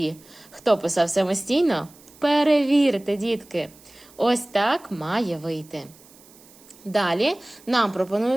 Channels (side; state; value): right; noise; hiss, 25 dB below the sound